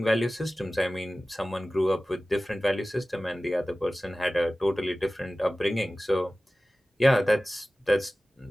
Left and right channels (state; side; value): normal; both; correlation 0.97